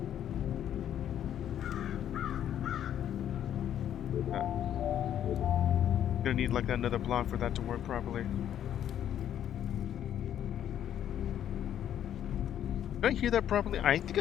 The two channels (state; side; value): quieter; right; 10.4 dB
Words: Gonna need like another block for that to work properly. Did I hear that properly? I think